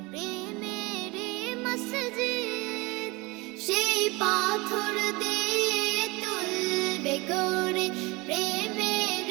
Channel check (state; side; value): quieter; left; 24.6 dB